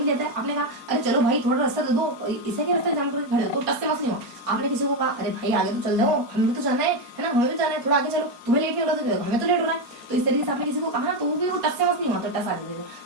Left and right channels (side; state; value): left; late; 4.3 ms